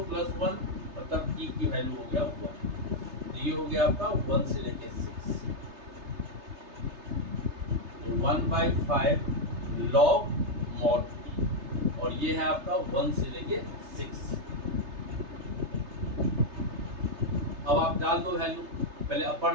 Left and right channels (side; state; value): left; late; 3.3 ms